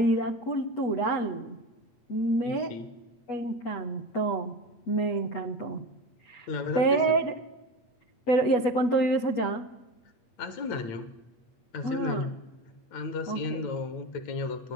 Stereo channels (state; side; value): late; right; 8.2 ms